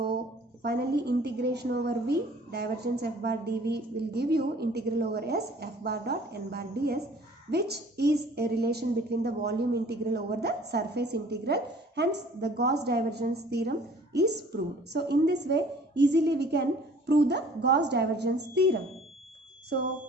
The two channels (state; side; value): normal; both; correlation 0.52